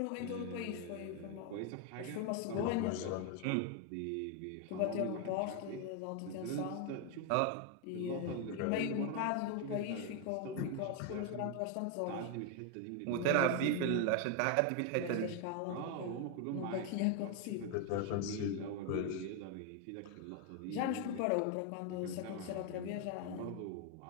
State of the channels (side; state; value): both; different; correlation 0.01